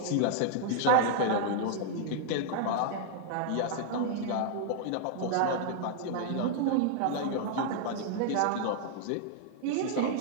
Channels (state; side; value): different; both; correlation -0.01